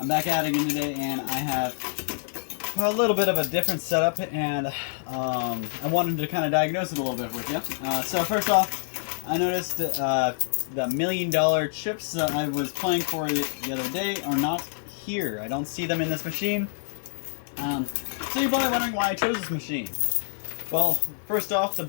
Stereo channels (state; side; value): silent; right; digital silence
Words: I'm back at it again today and I have a little bit of a different setup and I wanted to kind of diagnose it a little bit with you. So first off, I noticed the $1 million chips that I was playing for the other day are not here. I don't see them in this machine. So you're probably wondering why I chose this machine. Well, first off, the